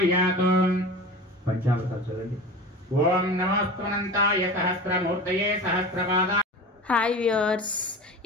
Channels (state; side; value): normal; both; correlation 0.33